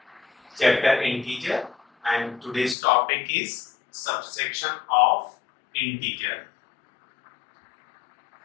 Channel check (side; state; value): right; drops out; at 2.8 s